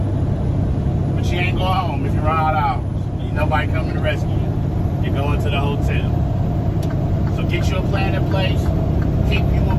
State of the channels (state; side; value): identical; both; correlation 1.00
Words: But you ain't going home if you run out of hours. Ain't nobody coming to rescue you. You're going to the hotel. So get you a plan in place. Keep you a